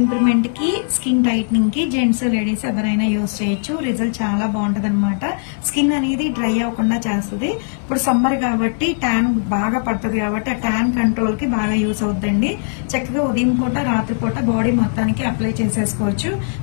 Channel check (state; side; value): silent; right; 57 dB below the other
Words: కి, స్కిన్ టైట్నింగ్ కి జెంట్స్ లేడీస్ ఎవరైనా యూజ్ చేయొచ్చు. రిజల్ట్ చాలా బాగుంటది అనమాట. స్కిన్ అనేది డ్రై అవ్వకుండా చేస్తుంది. ఇప్పుడు సమ్మర్ కాబట్టి ట్యాన్ బాగా పడుతుంది కాబట్టి ఆ ట్యాన్ కంట్రోల్ కి బాగా యూజ్ అవుతుందండి. చక్కగా ఉదయం పూట రాత్రిపూట బాడీ మొత్తానికి అప్లై చేసేసుకోవచ్చు.